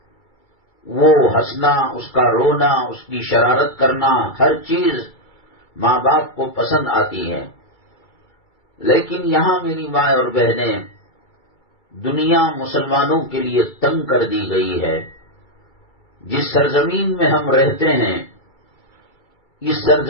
وہ ہنسنا، اس کا رونا، اس کی شرارت کرنا، ہر چیز ماں باپ کو پسند آتی ہے. لیکن یہاں میری مائیں اور بہنیں، دنیا مسلمانوں کے لیے تنگ کر دی گئی ہے. جس سرزمین میں ہم رہتے ہیں، اس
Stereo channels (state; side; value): late; right; 2.3 ms